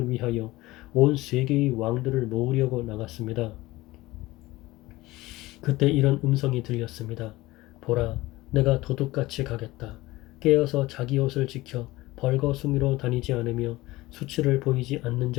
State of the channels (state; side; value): quieter; right; 19.2 dB